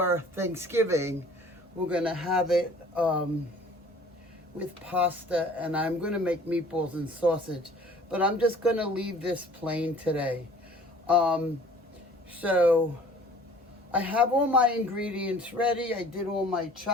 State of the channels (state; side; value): normal; both; correlation 0.50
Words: Thanksgiving. We're going to have it with pasta, and I'm going to make meatballs and sausage. But I'm just going to leave this plain today. So I have all my ingredients ready. I did all my